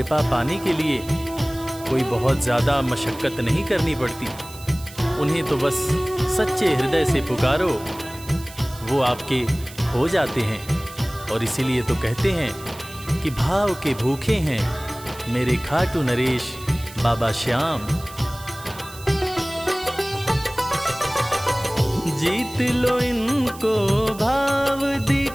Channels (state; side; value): noise; right; hiss, 17 dB below the sound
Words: पाने के लिए कोई बहुत ज़्यादा मशक्क़त नहीं करनी पड़ती। उन्हें तो बस सच्चे हृदय से पुकारो, वो आपके हो जाते हैं। और इसीलिए तो कहते हैं कि भाव के भूखे हैं मेरे खाटू नरेश बाबा श्याम। जीत लो इनको भाव